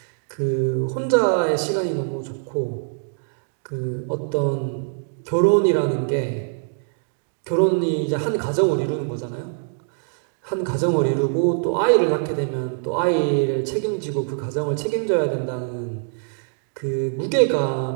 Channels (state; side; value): silent; left; digital silence